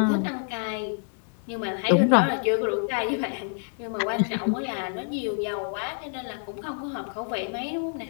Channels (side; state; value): right; silent; digital silence